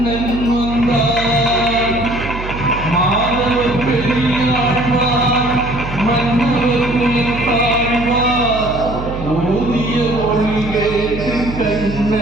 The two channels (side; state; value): right; noise; hum, 9 dB below the sound